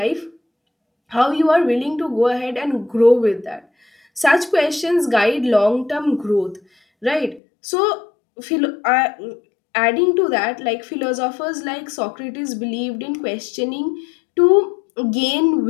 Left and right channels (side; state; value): right; drops out; at 7.4 s